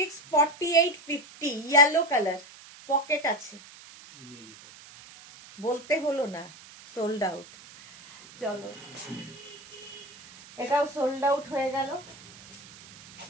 48, 50 ইয়েলো কালার, পকেট আছে। বলতে হলো না সোল্ড আউট। চলো এটাও সোল্ড আউট হয়ে গেল।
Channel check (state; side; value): noise; right; hiss, 20 dB below the sound